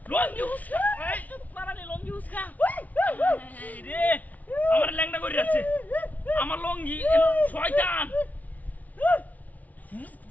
লঙ্গি উস্কা এই চুপ পারা নি লঙ্গি উস্কা হাই রে আমার ল্যাংড়া করে যাচ্ছে আমার লঙ্গি শয়তান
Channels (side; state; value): right; late; 0.074 ms